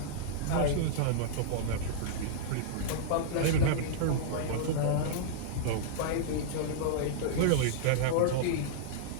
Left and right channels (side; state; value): both; different; correlation -0.02